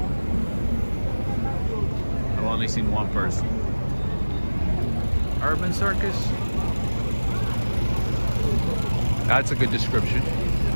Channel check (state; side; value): inverted; both; correlation -1.00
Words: I've only seen one person. Urban circus? That's a good description.